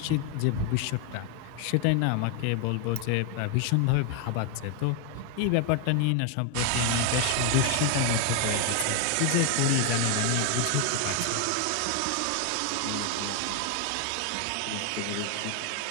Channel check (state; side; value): different; both; correlation 0.01